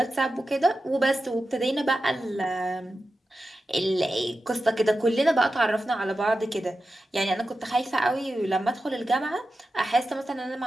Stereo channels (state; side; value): normal; both; correlation 0.92